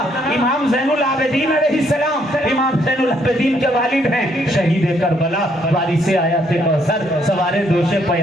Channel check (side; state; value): both; normal; correlation 0.70